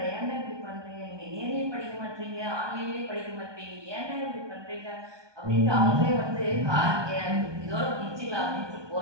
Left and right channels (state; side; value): late; left; 1.2 ms